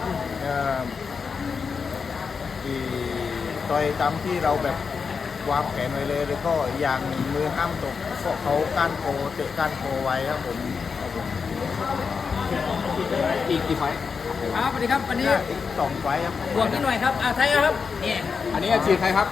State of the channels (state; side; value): quieter; right; 5.5 dB